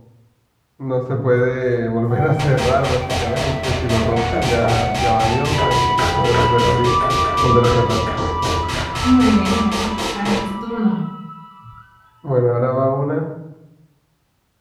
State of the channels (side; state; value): both; identical; correlation 1.00